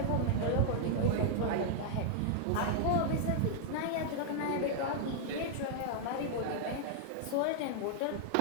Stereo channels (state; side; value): different; both; correlation -0.01